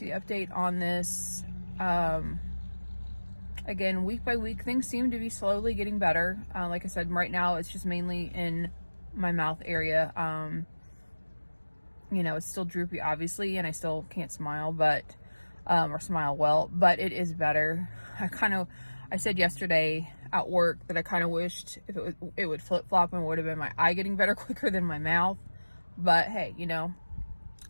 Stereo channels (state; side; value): inverted; both; correlation -1.00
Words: update on this. Again, week by week, things seem to be slowly getting better. Like I said, right now it's just mainly in my mouth area. You know, it's still droopy, obviously, and I still can't smile, but or smile well, but it is better. I said yesterday at work that I kind of wished if it would flip-flop and it would have been my eye getting better quicker than my mouth. But hey, you know,